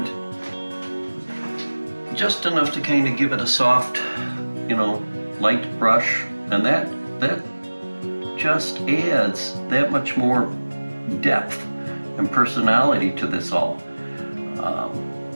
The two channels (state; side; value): inverted; both; correlation -1.00